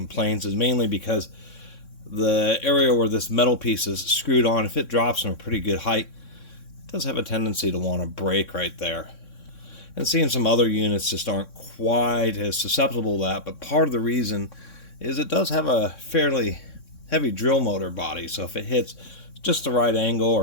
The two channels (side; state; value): right; late; 3.6 ms